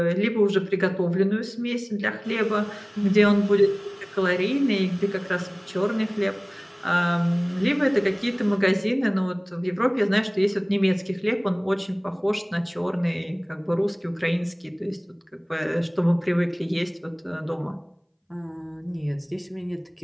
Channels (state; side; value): identical; both; correlation 1.00